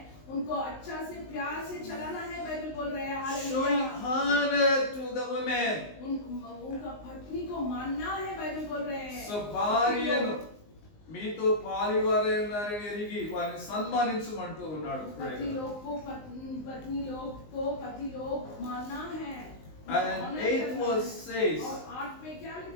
उनको अच्छा से प्यार से चलाना है। बाइबल बोल रहे हैं Showing hallelujah. honor to the women. उनका पत्नी को मानना है। बाइबल बोल रहे हैं సో భార్యను మీతో పాలివారై ఉన్నారని ఎరిగి వారిని సన్మానించమంటూ ఉన్నాడు. पति लोग को पत्नी लोग को पति लोग मानना है। And 8th verse says, और 8 में क्या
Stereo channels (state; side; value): late; right; 19 ms